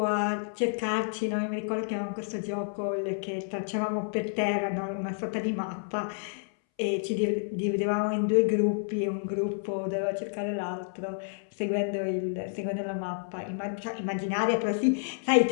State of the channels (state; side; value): silent; right; 58 dB below the other